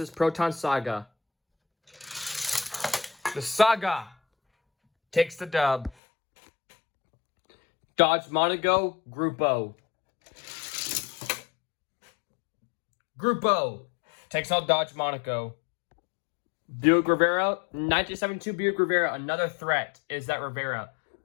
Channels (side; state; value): right; drops out; at 6.0 s